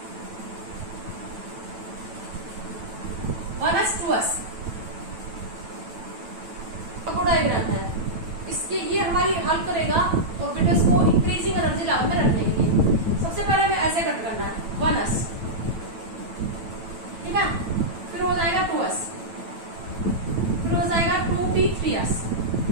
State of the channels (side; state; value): left; late; 9.1 ms